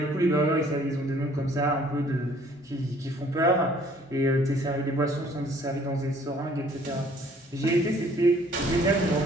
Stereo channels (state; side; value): normal; both; correlation 0.58